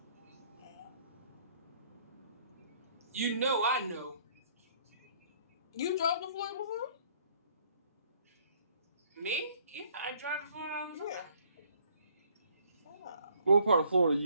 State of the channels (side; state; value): both; inverted; correlation -0.62